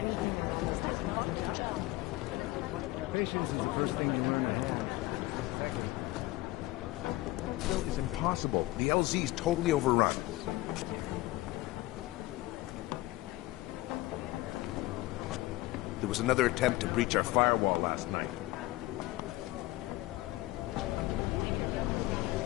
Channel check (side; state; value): right; quieter; 18.9 dB